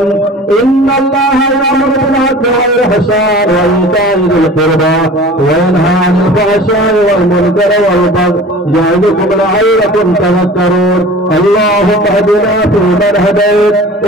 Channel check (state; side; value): normal; both; correlation 0.42